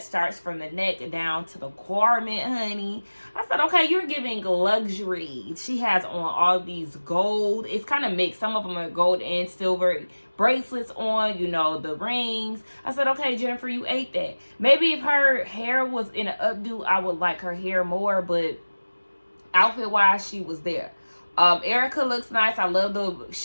starts from the neck down to the garment, honey. I said, okay, you're giving luxury. She has on all these gold. It's kind of mixed. Some of them are gold and silver bracelets on, you know, the rings. I said, okay, Jennifer, you ate that. Maybe if her hair was in an updo, I would like her hair more, but outfit-wise, she was there. Erica looks nice. I love the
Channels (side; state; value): both; inverted; correlation -1.00